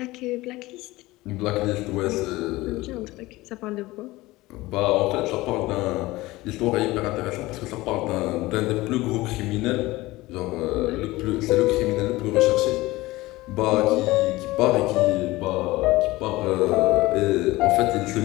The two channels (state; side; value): quieter; right; 19.4 dB